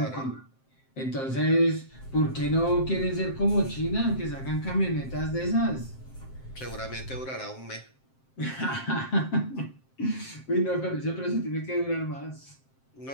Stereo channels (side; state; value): right; late; 7.6 ms